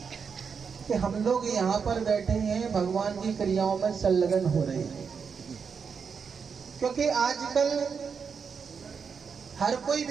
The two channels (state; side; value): quieter; left; 6.1 dB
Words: कि हम लोग यहाँ पर बैठे हैं, भगवान की क्रियाओं में संलग्न हो रहे हैं। क्योंकि आजकल हर कोई